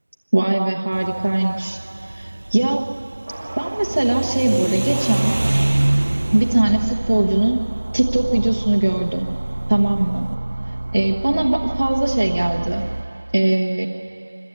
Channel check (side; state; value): both; inverted; correlation -1.00